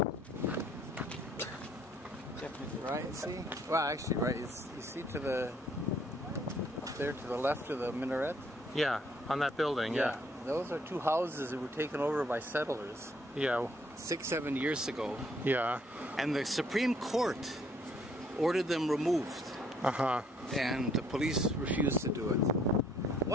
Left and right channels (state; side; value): normal; both; correlation 0.65